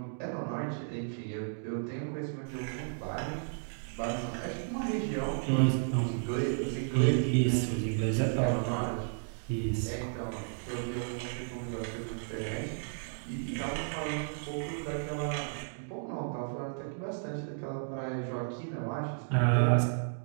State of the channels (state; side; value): silent; left; digital silence